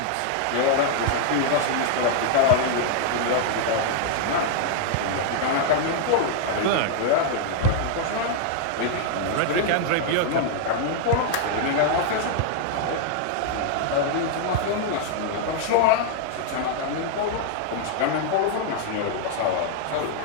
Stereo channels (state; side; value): different; both; correlation -0.01